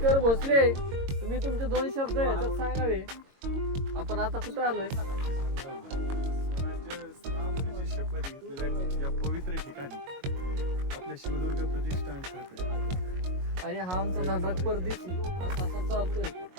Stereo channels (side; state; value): left; late; 22 ms